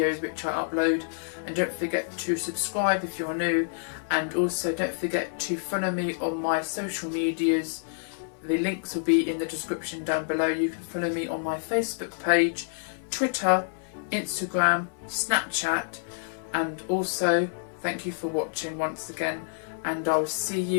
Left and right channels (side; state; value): right; silent; 59 dB below the other